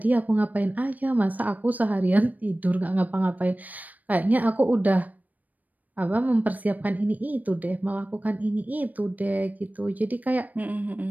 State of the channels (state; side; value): late; left; 0.079 ms